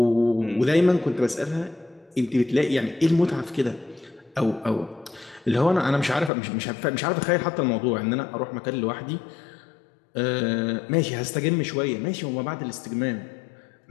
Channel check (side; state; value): right; drops out; at 6.3 s